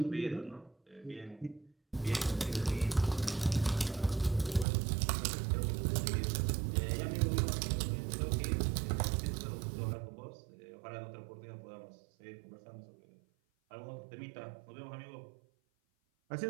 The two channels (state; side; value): drops out; left; at 4.7 s